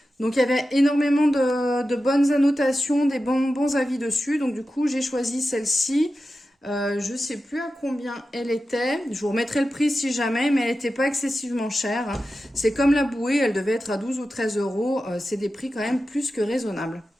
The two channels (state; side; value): normal; both; correlation 0.92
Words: Donc il y avait énormément de bonnes annotations, des bons avis dessus. Donc du coup j'ai choisi celle-ci. Je sais plus à combien elle était. Je vous remettrai le prix si jamais, mais elle n'était pas excessivement chère. C'est comme la bouée, elle devait être à 12 ou 13 €. C'est des prix quand même plus que raisonnables.